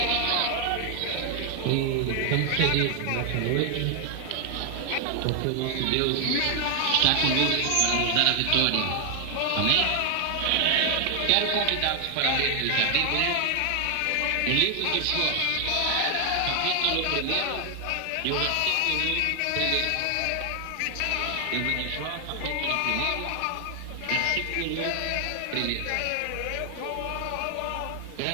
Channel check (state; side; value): different; both; correlation 0.00